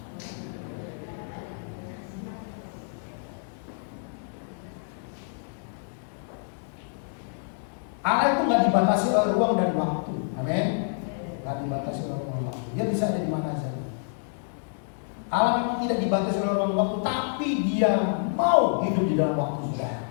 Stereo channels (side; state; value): right; silent; digital silence